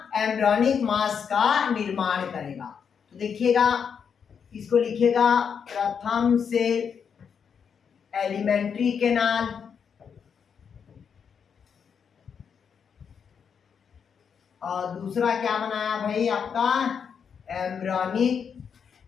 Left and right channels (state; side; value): quieter; right; 6.9 dB